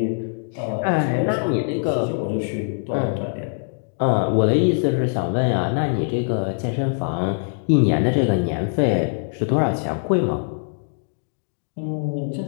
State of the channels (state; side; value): silent; right; digital silence